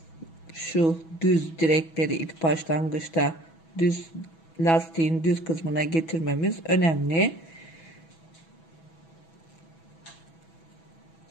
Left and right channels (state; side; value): late; right; 6.1 ms